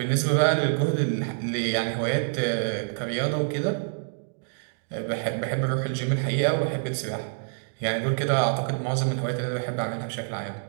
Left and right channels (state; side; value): silent; left; digital silence